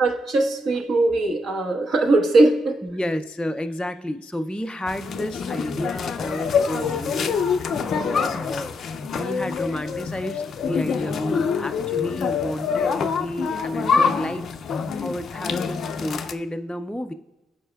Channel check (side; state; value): both; normal; correlation 0.79